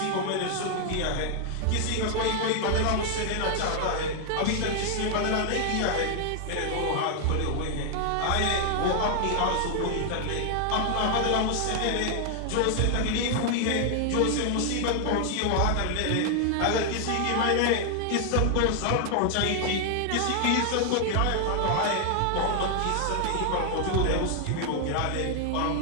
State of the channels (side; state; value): both; different; correlation 0.00